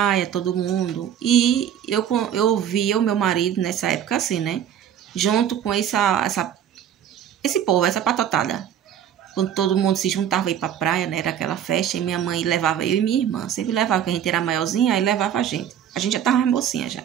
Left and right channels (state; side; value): quieter; left; 9.6 dB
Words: todo mundo. E eu via o meu marido nessa época assim, né? Junto com esse povo, essa patotada. Quando todo mundo se juntava aí pra praia, né? Era aquela festa, e minha mãe levava eu e minha irmã. Sempre levava, porque a gente era maiorzinha, aí levava a gente. A gente já tava mais mocinha já.